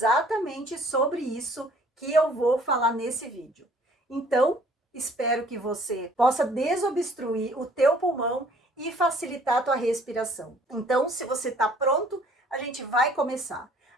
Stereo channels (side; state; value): both; normal; correlation 0.57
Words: sobre isso que eu vou falar nesse vídeo. Então, espero que você possa desobstruir o teu pulmão e facilitar a tua respiração. Então, se você está pronto, a gente vai começar.